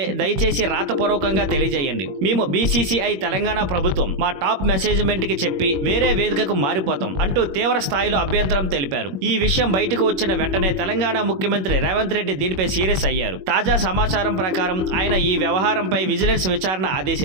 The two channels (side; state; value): left; late; 21 ms